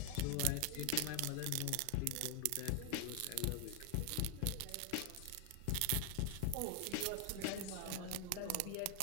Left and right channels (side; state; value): both; different; correlation 0.00